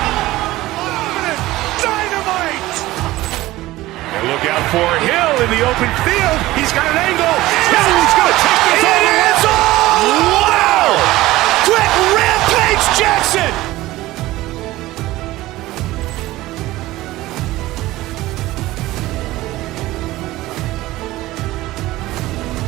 Dynamite. And look out for Hill in the open field. He's got an angle. He's going to take this all the way. Wow. Quick rampage Jackson.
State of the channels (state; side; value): quieter; left; 17.4 dB